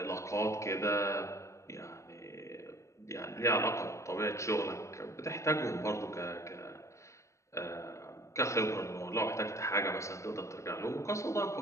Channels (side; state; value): right; late; 0.14 ms